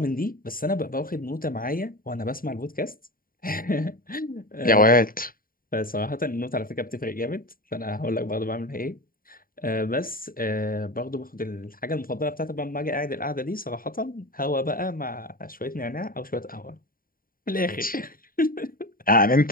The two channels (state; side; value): late; right; 0.41 ms